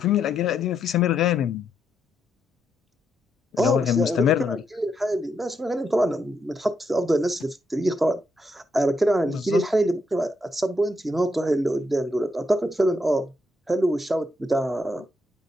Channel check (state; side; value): normal; both; correlation 0.79